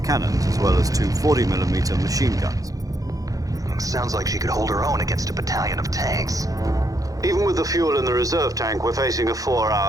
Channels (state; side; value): late; left; 0.17 ms